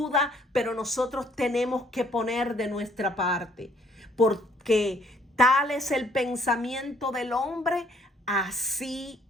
pero nosotros tenemos que poner de nuestra parte, porque tal es el pensamiento del hombre, así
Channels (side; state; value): both; normal; correlation 0.64